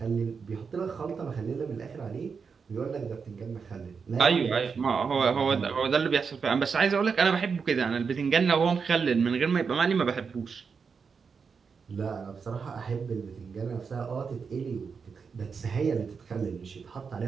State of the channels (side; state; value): left; quieter; 5.7 dB